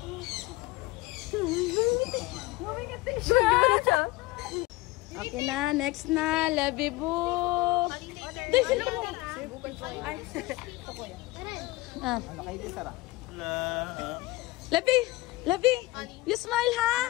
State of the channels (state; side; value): quieter; right; 20.4 dB